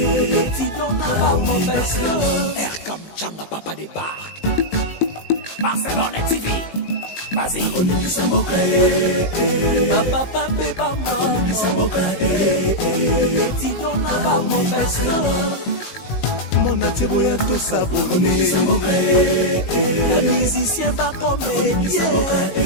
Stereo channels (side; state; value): right; late; 19 ms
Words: étudiant na baprofesseur Erkam Changa papa de Barque Barcelone TV. Vas-y. Papa, papa, maman. Étudiant là-bas, professeur. Mon attiré à tous abonnés. Pas musicien, pas comédien.